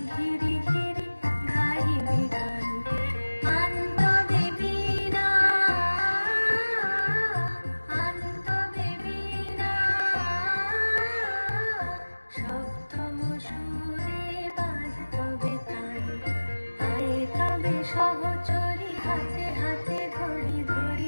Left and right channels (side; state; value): both; inverted; correlation -1.00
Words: ঘিরি ঘিরি গাহিবি গান। আনতবে বীণা আনতবে বীণা সপ্তম সুরে বাজতবে তান। তবে সহচরী হাতে হাতে ধরি